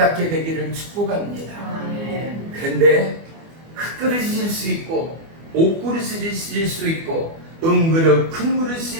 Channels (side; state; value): left; late; 24 ms